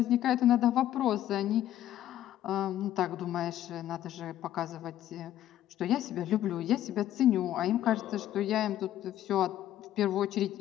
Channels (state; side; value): quieter; right; 12.4 dB